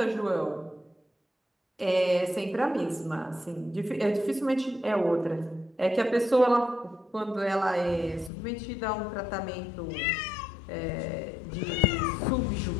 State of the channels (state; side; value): drops out; right; at 8.3 s